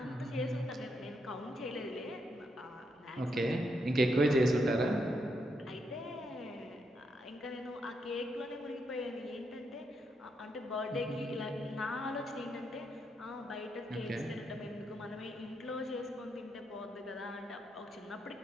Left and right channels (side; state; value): both; normal; correlation 0.79